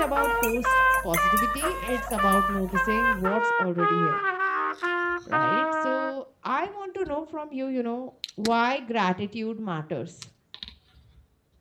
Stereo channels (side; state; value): both; identical; correlation 1.00